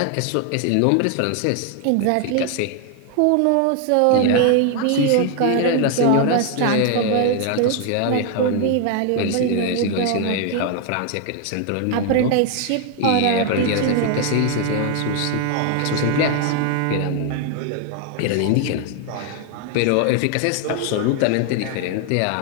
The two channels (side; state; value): both; different; correlation 0.01